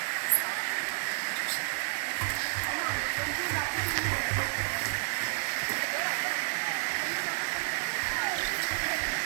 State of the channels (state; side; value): silent; left; 57 dB below the other